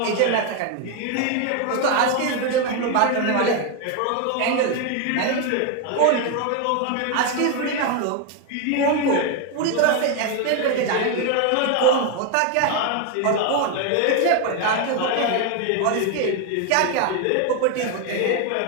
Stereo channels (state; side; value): different; both; correlation 0.01